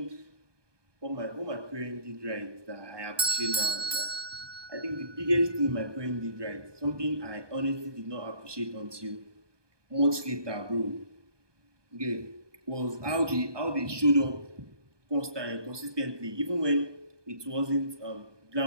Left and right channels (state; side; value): late; left; 1.2 ms